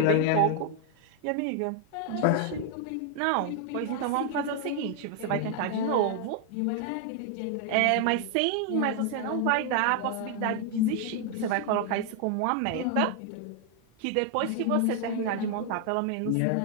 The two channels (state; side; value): different; both; correlation 0.00